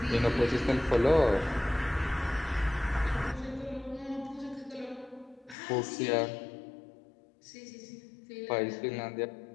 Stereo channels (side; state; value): right; drops out; at 5.6 s